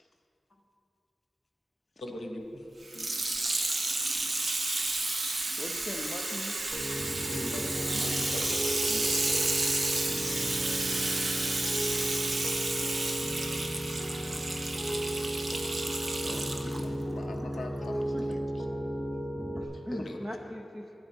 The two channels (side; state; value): both; normal; correlation 0.94